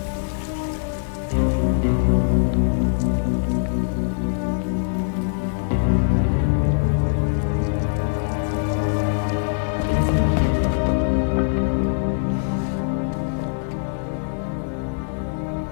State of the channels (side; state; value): right; silent; digital silence